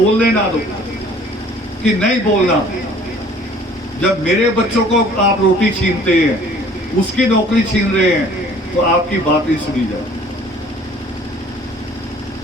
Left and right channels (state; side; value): normal; both; correlation 0.53